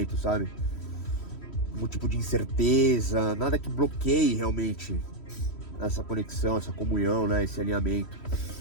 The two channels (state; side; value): late; right; 3.1 ms